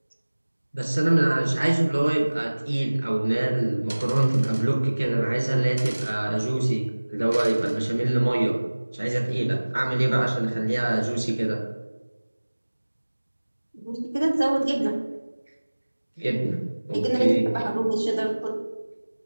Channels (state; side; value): inverted; both; correlation -1.00